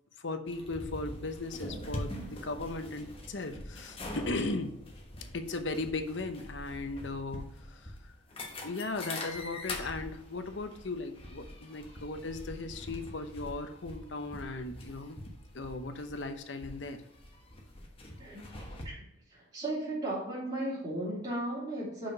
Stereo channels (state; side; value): normal; both; correlation 0.29